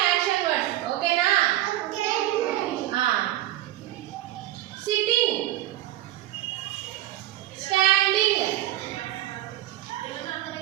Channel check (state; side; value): quieter; left; 14.8 dB